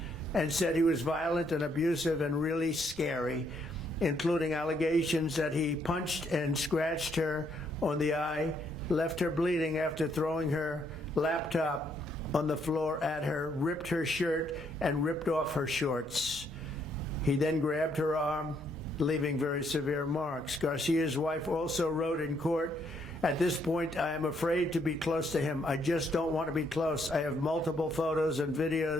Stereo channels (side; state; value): both; normal; correlation 0.72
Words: and said he was violent and abusive and really scary, including allegations that he punched and scratched her on the eye, left her bleeding after throwing her laptop on the floor at her, ripped her shirt, and ripped off her shorts. He then grabbed her arm, leaving very severe marks. Garcia's wife also wrote in court, "At this point, I am afraid to be close to him. I just don't want to be close. I have multiple photos and